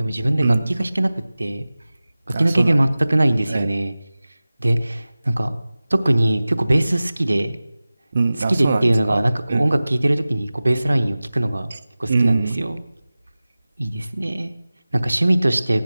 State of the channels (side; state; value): both; inverted; correlation -0.97